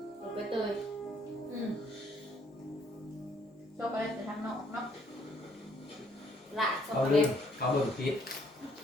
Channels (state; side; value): normal; both; correlation 0.66